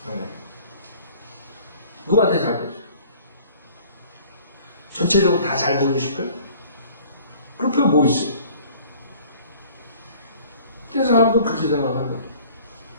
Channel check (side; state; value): both; inverted; correlation -0.50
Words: 누구한테 잘 보여요? 전체적으로 다 잘 보이고 싶어요? 그럴 필요 뭐 있어요? 그 사람도 그렇게 생각하는 거예요.